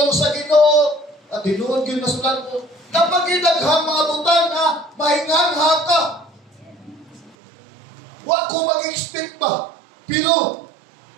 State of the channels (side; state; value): left; drops out; at 7.4 s